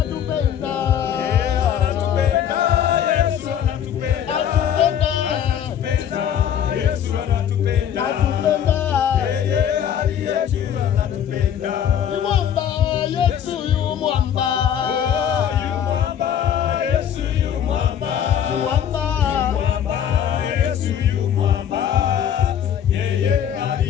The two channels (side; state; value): right; quieter; 9.3 dB